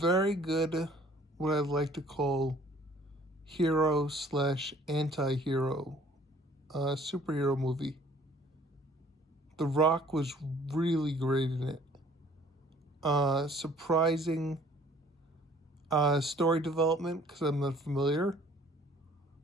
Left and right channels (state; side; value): normal; both; correlation 0.56